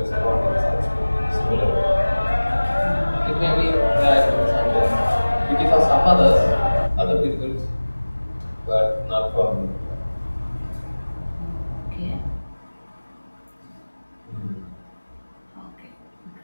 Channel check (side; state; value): both; inverted; correlation -1.00